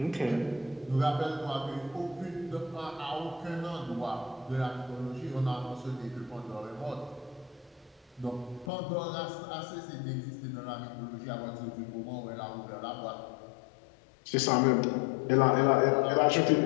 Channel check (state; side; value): drops out; right; at 8.7 s